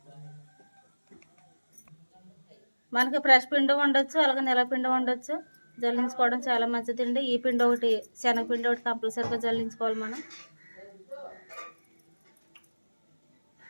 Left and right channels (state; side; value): inverted; both; correlation -1.00